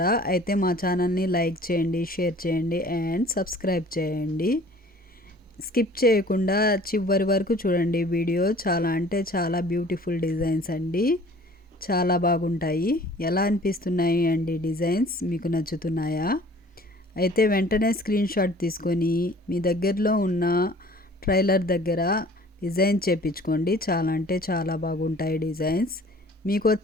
అయితే మా ఛానల్ని లైక్ చేయండి, షేర్ చేయండి అండ్ సబ్స్క్రైబ్ చేయండి. స్కిప్ చేయకుండా చివరి వరకు చూడండి. వీడియో చాలా అంటే చాలా బ్యూటిఫుల్ డిజైన్స్ అండి. చాలా బాగుంటాయి. ఎలా అనిపిస్తున్నాయి అండి డిజైన్స్? మీకు నచ్చుతున్నాయా? అయితే వెంటనే స్క్రీన్ షాట్ తీసుకొని మీ దగ్గరలో ఉన్న ట్రైలర్ దగ్గర డిజైన్ చేపించుకోండి. చాలా అంటే చాలా బాగుంటాయి డిజైన్స్. మీకు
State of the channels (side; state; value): both; normal; correlation 0.50